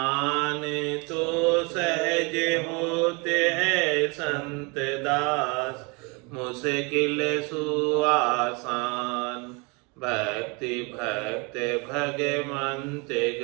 तो सहज होते हैं संत दास मुश्किल सुआसान भक्ति भक्त भगवंत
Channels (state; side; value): quieter; left; 30.2 dB